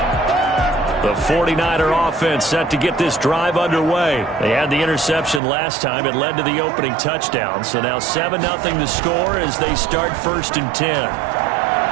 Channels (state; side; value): drops out; left; at 5.4 s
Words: The 49er offense set to get this drive underway. They had the interception last time. It led to the opening touchdown. So now 7-0 the score as they start 1st and 10.